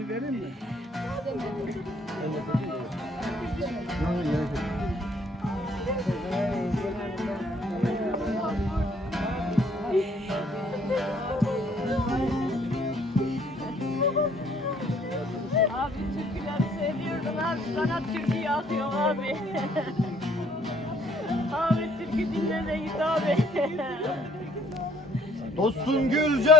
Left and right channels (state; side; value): normal; both; correlation 0.63